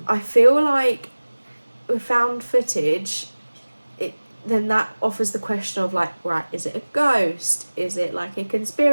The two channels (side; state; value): both; inverted; correlation -1.00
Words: I feel like with found footage, then that offers the question of right, is it a ghost? Is it a